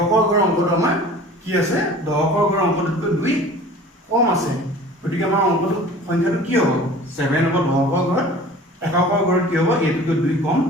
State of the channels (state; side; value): normal; both; correlation 0.44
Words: ঘৰ অংকটো আমাৰ কি আছে দশকৰ ঘৰ অংকটোতকৈ 2 কম আছে গতিকে আমাৰ অংকটো সংখ্যাটো কি হ'ব 7 হ'ব দশকৰ ঘৰত এককৰ ঘৰত কি হ'ব এটোকৈ 2 কম